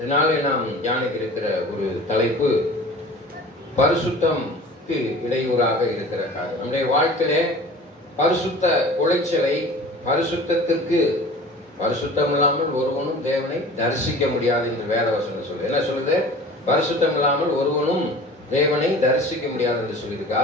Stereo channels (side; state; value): both; normal; correlation 0.42